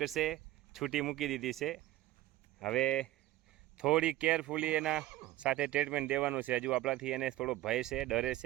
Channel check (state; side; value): quieter; left; 15.5 dB